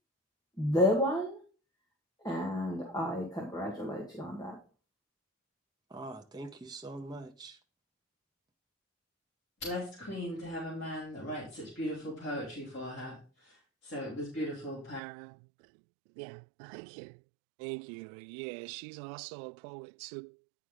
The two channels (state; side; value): drops out; left; at 15.0 s